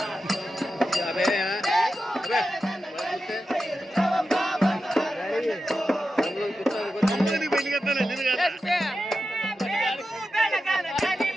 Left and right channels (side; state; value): both; normal; correlation 0.91